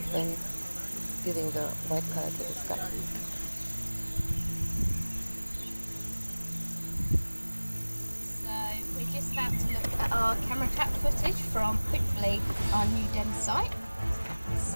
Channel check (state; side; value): inverted; both; correlation -1.00